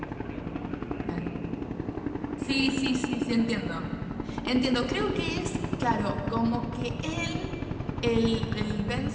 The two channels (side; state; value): both; identical; correlation 1.00